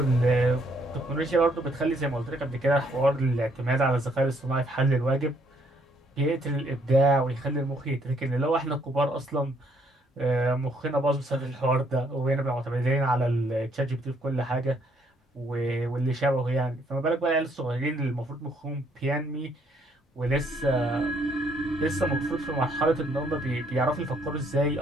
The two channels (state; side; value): normal; both; correlation 0.68